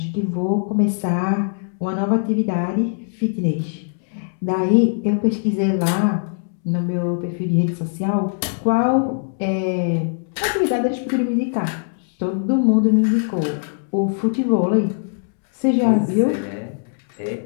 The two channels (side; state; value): right; silent; 65 dB below the other